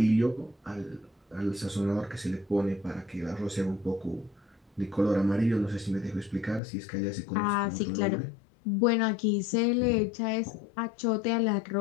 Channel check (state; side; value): drops out; right; at 6.6 s